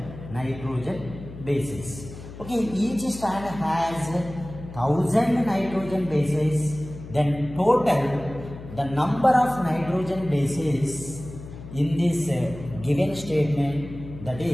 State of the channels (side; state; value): left; noise; hum, 14 dB below the sound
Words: bases. Okay, each strand has 1000 nitrogen bases. Then total the number of nitrogen bases in this given statement, that